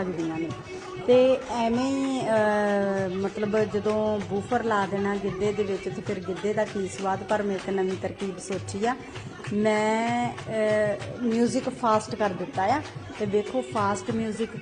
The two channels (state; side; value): identical; both; correlation 1.00